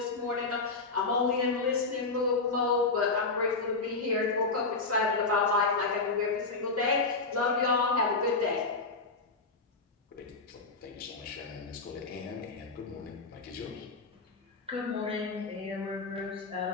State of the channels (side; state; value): right; quieter; 3.9 dB